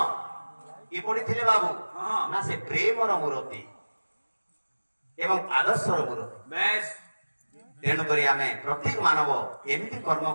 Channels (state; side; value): inverted; both; correlation -1.00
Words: কি পড়িଥିଲେ বাবু হ্যাঁ। না সে প্রেমর মূরতি এবং আদর্শর মূরতি। ব্যাস তেଣୁକରି ଆମେ ପ୍ରତ୍ୟେକ ମାନବ ଏମିତି କର୍ମ